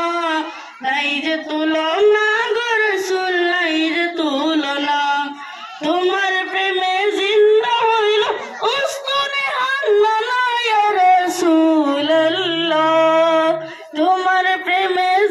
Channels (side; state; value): both; identical; correlation 1.00